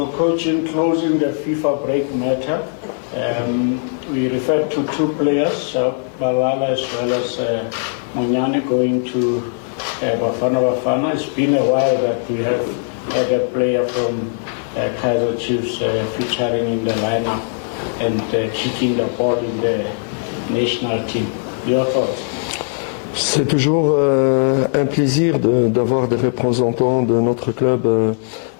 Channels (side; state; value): right; silent; digital silence